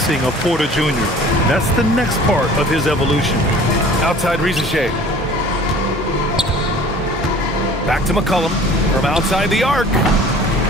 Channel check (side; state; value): both; normal; correlation 0.47